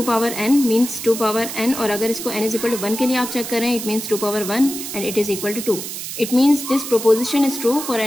power n means 2 power n, और अगर इसको n इज इक्वल टू 1 के लिए आप चेक करें it means 2 power 1 and it is equal to 2, it means this proposition is true for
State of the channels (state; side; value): noise; right; hiss, 7 dB below the sound